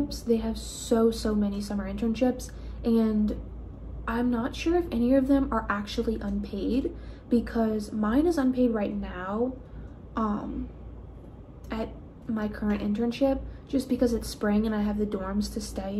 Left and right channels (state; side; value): identical; both; correlation 1.00